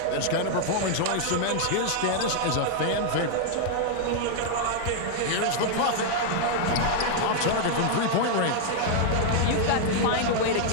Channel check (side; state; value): both; different; correlation -0.01